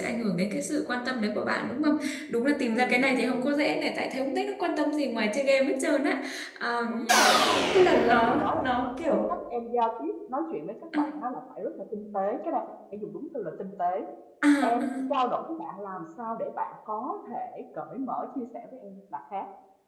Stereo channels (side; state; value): both; identical; correlation 1.00